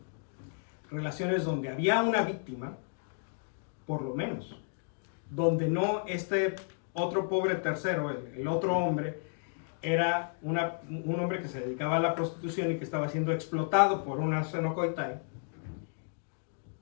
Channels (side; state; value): right; silent; digital silence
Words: Relaciones donde había una víctima, por lo menos. Donde no este otro pobre tercero, el otro hombre, era un hombre que se dedicaba a la prostitución y que estaba siendo explotado por una arsenokoitai,